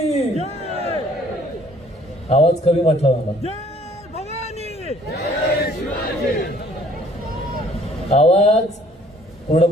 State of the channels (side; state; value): both; normal; correlation 0.58